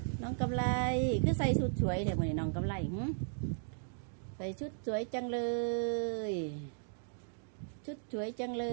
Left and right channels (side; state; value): left; silent; digital silence